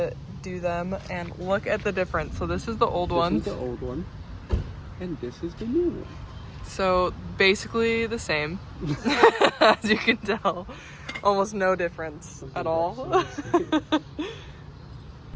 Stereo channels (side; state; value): both; identical; correlation 1.00